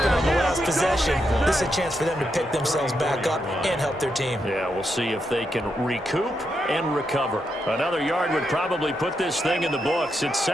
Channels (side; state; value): both; normal; correlation 0.83